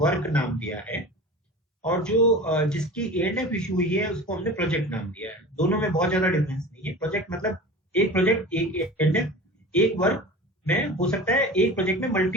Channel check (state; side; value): normal; both; correlation 0.35